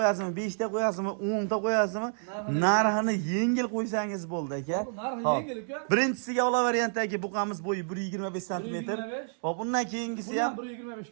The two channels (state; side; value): silent; left; digital silence